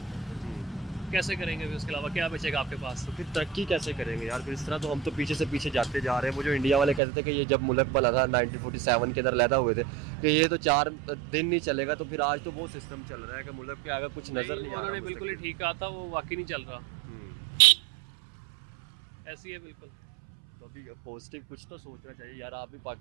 कैसे करेंगे फिर, उसके अलावा क्या बचेगा आपके पास। तो फिर तरक्की कैसे करेंगे यार, फिर इस तरह तो हम तो पीछे से पीछे जाते जा रहे हैं। वो जो इंडिया वाले कहते थे कि ये जब मुल्क बना था 1947 के अंदर लैदा हुए थे कि ये तो 4 दिन नहीं चलेगा, तो फिर आज तो वो सिस्टम चल रहा है कि मुल्क के आगे कुछ नज़र नहीं आ रहा। उन्होंने बिल्कुल ही ठीक कहा था, वो वाकई नहीं चल रहा, ऐसी है बिल्कुल। तो अभी पॉजिटिव कुछ तो सोचना चाहिए यार, आप भी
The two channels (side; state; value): left; drops out; at 7.0 s